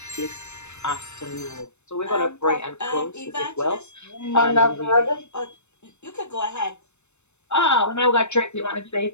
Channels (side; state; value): right; late; 0.82 ms